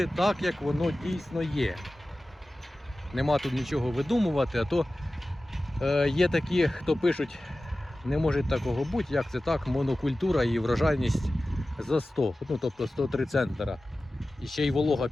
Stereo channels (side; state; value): both; normal; correlation 0.96